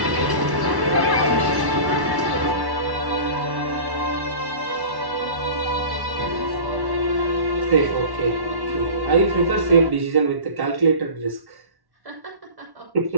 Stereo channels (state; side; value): late; left; 1.1 ms